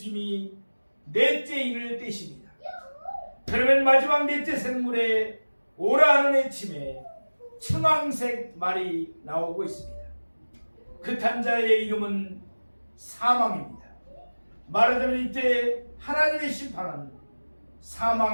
넷째 인을 떼십니다. 그러면 마지막 넷째 생물에 오라 하는 외침에 청황색 말이 나오고 있습니다. 그 탄자의 이름은 사망입니다. 말하자면 이때 하나님의 심판은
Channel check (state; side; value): inverted; both; correlation -1.00